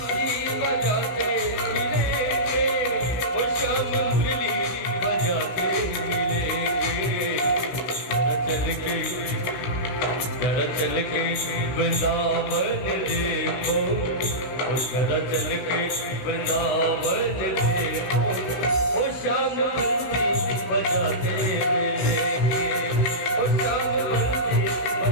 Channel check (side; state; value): right; late; 16 ms